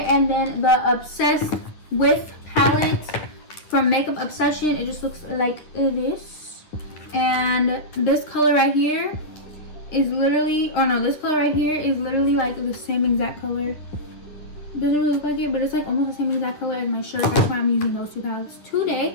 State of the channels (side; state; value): right; late; 9.8 ms